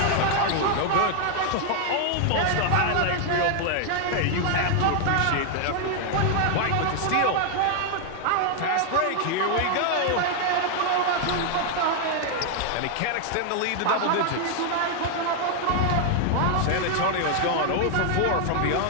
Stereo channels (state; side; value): different; both; correlation 0.00